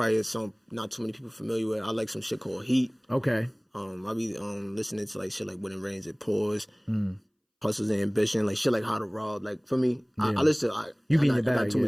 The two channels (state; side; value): identical; both; correlation 1.00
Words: a song not too many people familiar with. I like some shit called Heat. Okay. I be listening to like shit like When It Rains It Pours. Hustles and Ambition, like shit like How to Rob. Like for me, I listen to you be in the I got bag. too